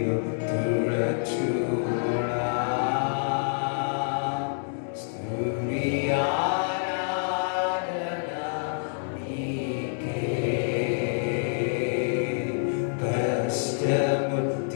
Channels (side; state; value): right; silent; digital silence